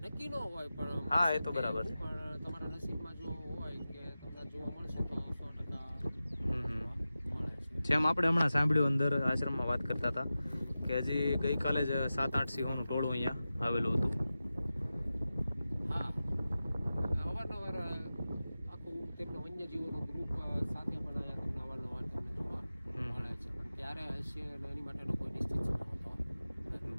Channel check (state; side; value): inverted; both; correlation -0.94